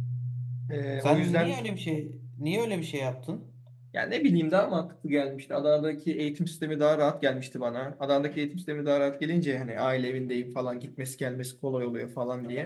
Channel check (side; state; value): both; identical; correlation 1.00